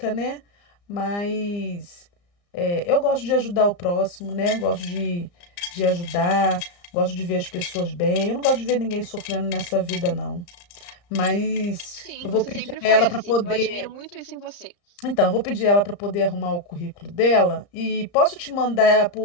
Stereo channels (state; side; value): late; right; 34 ms